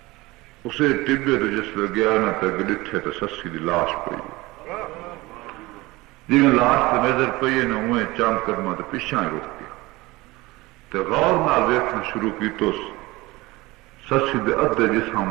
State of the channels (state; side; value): quieter; left; 21.0 dB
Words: اسے ٹبے تو جس لے گیا نہ تک ڈٹھے تو سسی دی لاش پئی جی لاش تو نظر پئی نہ ہوئے چاند قدمہ تو پیچھا ہی رک گیا تو غور نال ویکھنا شروع کی تو سسی دے ادھے